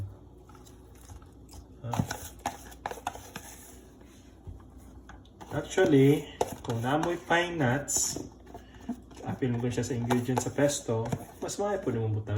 Actually, kung namoy pine nuts, apil mo siya sa ingredients sa pesto, mas maaari po naman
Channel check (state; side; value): identical; both; correlation 1.00